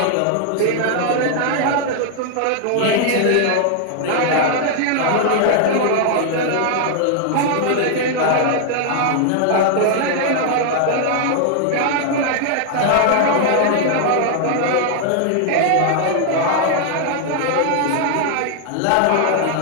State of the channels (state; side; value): different; both; correlation 0.00